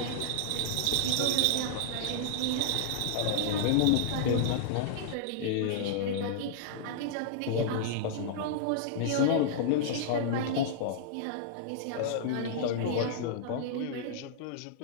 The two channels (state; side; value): different; both; correlation -0.02